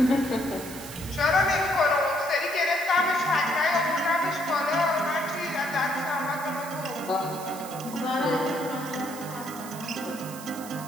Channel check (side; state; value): right; noise; hiss, 14 dB below the sound